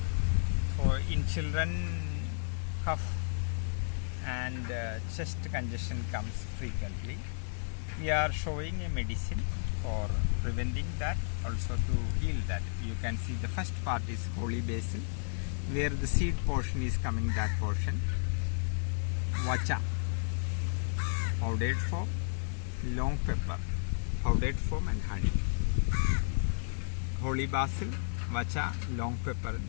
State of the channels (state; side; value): silent; right; digital silence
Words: For in children, cough and chest congestion comes frequently. We are showing a medicine for preventing that, also to heal that. You can see the first part is holy basil, where the seed portion is coming, that portion. Vacha, powdered form, long pepper, powdered form, and honey. Holy basil, vacha, long pepper.